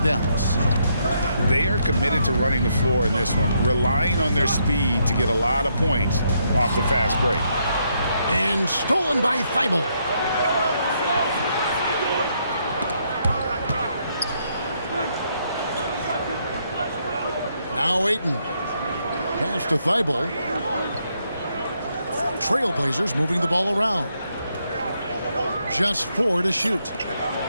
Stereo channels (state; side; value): inverted; both; correlation -0.76